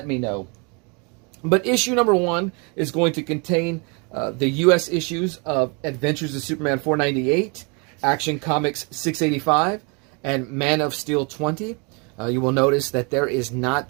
me know. But issue number 1 is going to contain the U.S. issues of Adventures of Superman 498, Action Comics 685, and Man of Steel 20. You will notice that there is not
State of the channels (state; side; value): quieter; left; 32.6 dB